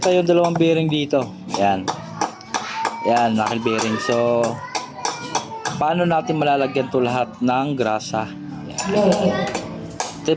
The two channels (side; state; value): both; identical; correlation 1.00